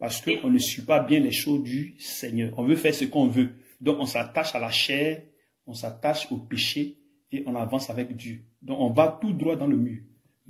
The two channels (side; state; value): both; identical; correlation 1.00